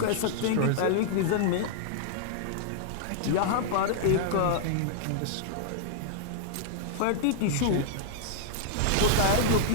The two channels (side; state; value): both; different; correlation -0.01